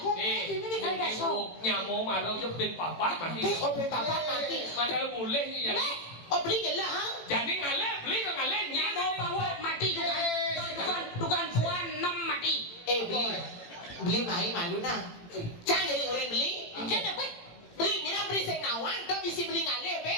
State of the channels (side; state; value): right; late; 18 ms